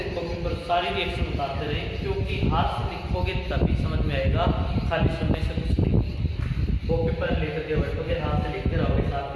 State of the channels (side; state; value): both; identical; correlation 1.00